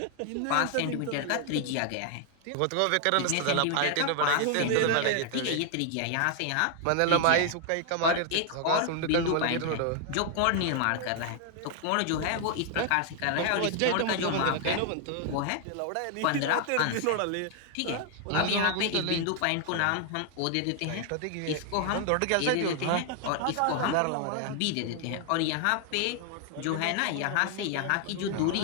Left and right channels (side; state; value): both; different; correlation 0.00